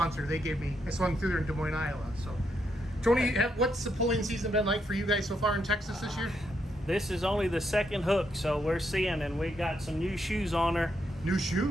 They gave me, I swung through there in Des Moines, Iowa. So, Tony, what's the pulling season been like for you guys so far in Texas this year? This is only the second hook, so we're seeing, and we got some new shoes on her. New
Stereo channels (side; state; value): both; normal; correlation 0.79